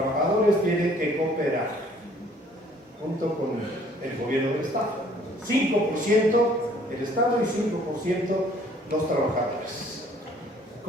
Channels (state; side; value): normal; both; correlation 0.58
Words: tienen que cooperar junto con el gobierno del Estado. 5% el Estado y 5% los trabajadores.